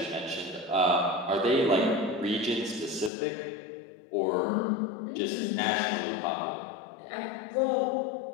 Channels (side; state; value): right; drops out; at 3.1 s